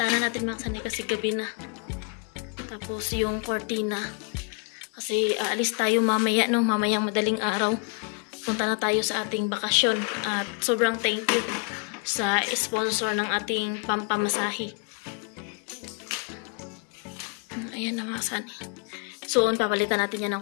natin mga kasani kasi gabi na. Tapos yung cortina. Kasi aalis tayo mamaya, no? Mamayang madaling araw. Punta na tayo sa ating bakasyon. At sobrang thank you sa sponsor ng ating pampamasahe. Ayan na mga kasani. So, papalitan natin yan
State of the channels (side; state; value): right; quieter; 35.7 dB